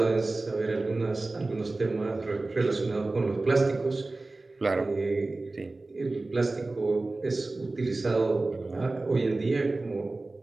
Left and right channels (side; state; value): left; quieter; 3.2 dB